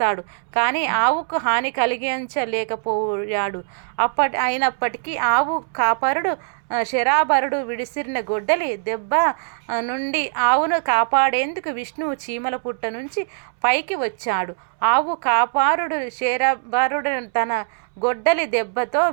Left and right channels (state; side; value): silent; left; 64 dB below the other